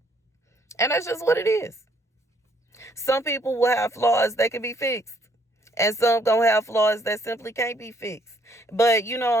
And that's just what it is. Some people will have flaws that can be fixed, and some gonna have flaws that simply can't be fixed. But you know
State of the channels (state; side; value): normal; both; correlation 0.67